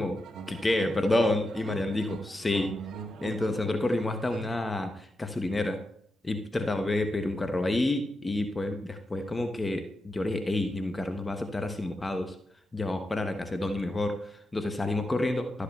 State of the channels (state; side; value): normal; both; correlation 0.88